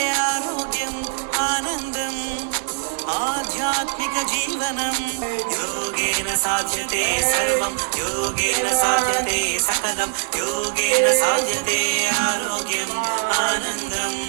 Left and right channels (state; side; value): silent; left; digital silence